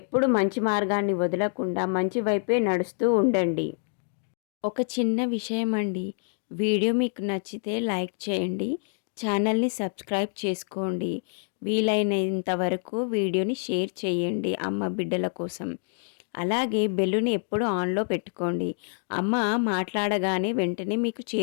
మంచి మార్గాన్ని వదలకుండా మంచి వైపే నడుస్తూ ఉండండి. ఒక చిన్న విషయం అండి, వీడియో మీకు నచ్చితే లైక్ చేయండి, ఛానల్ని సబ్స్క్రైబ్ చేసుకోండి, వీలైనంత వరకు వీడియోని షేర్ చేయండి అమ్మ బిడ్డల కోసం. అలాగే బెల్లుని ఎప్పుడు ఆన్లో పెట్టుకోండి. అమ్మ మాట్లాడగానే వెంటనే మీకు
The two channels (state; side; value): silent; right; 60 dB below the other